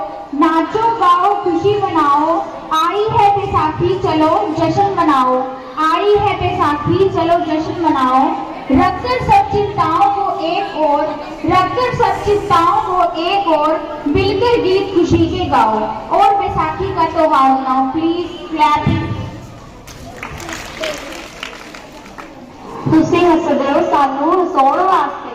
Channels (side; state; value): both; identical; correlation 1.00